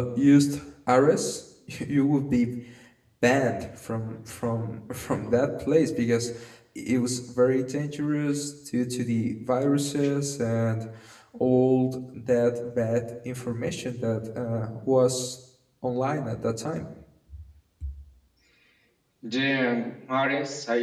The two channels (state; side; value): identical; both; correlation 1.00